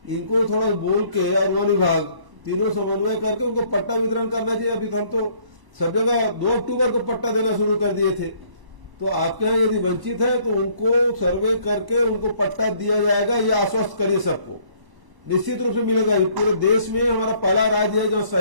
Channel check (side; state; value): left; late; 1.0 ms